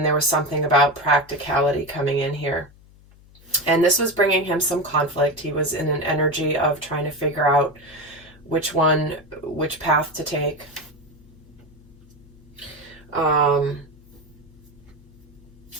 there was something about practicality coming in here. And this was bringing him some conflict. He was in an energy of trying to figure out which path to take.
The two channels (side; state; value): left; noise; hum, 25 dB below the sound